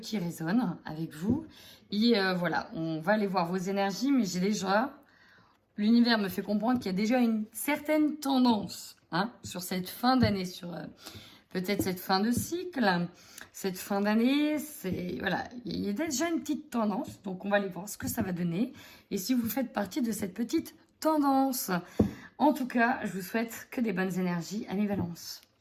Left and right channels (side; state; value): both; identical; correlation 1.00